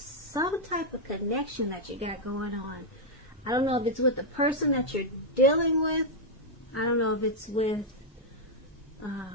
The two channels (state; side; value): normal; both; correlation -0.03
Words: type of connection that you got going on. I don't know if it's with the person that you're dealing with. I don't know if it's with